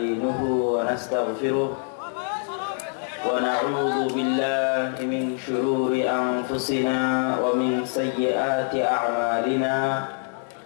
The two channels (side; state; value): right; silent; 62 dB below the other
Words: ونستغفره ونعوذ بالله من شرور أنفسنا ومن سيئات أعمالنا.